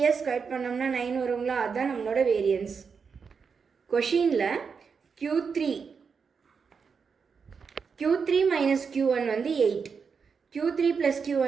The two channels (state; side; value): quieter; left; 5.8 dB